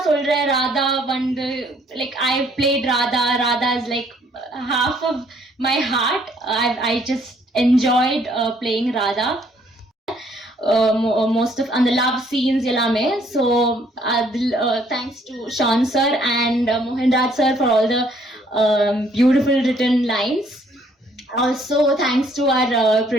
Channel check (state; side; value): normal; both; correlation 0.64